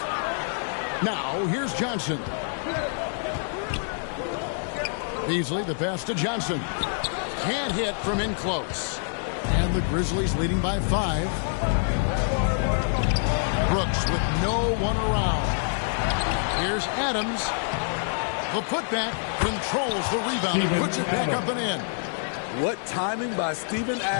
Now, here's Johnson. Beasley, the pass to Johnson. Can't hit from in close. And the Grizzlies leading by 5. Brooks with no one around. Here's Adams. The putback controls the rebound and puts it back up and in. What timing by Steven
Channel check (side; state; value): right; silent; digital silence